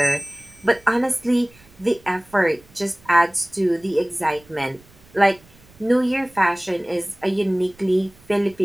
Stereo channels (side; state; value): right; noise; rumble, 27 dB below the sound